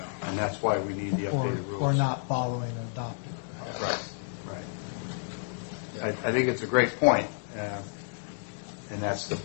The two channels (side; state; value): right; silent; digital silence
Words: and that's why we need the updated rules. Or not following an adopted process. Right. I think it's a great point, and that's the